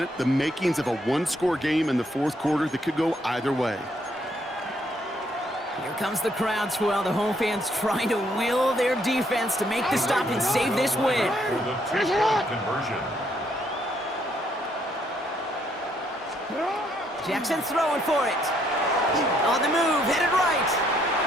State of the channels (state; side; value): normal; both; correlation 0.71